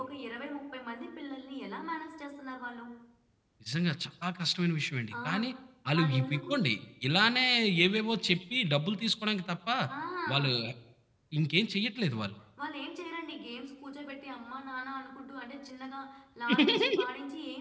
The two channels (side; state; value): both; identical; correlation 1.00